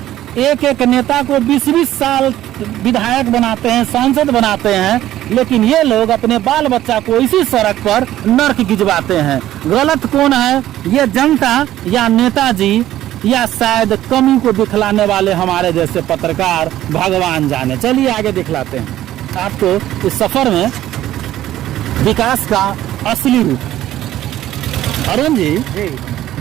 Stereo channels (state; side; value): quieter; left; 13.5 dB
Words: एक एक नेता को 20-20 साल विधायक बनाते हैं, सांसद बनाते हैं, लेकिन ये लोग अपने बाल बच्चा को इसी सड़क पर नर्क गिजवाते हैं। गलत कौन है, ये जनता या नेताजी या शायद कमी को दिखलाने वाले हमारे जैसे पत्रकार, भगवान जाने। चलिए आगे दिखलाते हैं आपको इस सफर में विकास का असली रूप। अरुण जी,